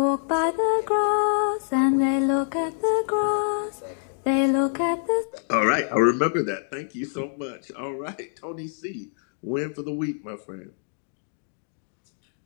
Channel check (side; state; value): right; silent; digital silence